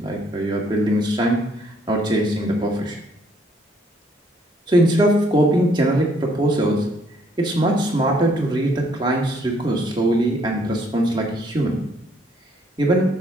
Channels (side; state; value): both; normal; correlation 0.66